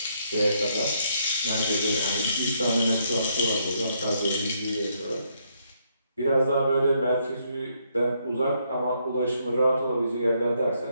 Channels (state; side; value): inverted; both; correlation -0.73